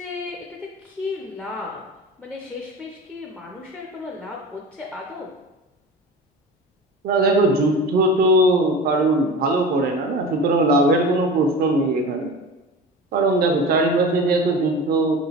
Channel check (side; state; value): both; normal; correlation 0.33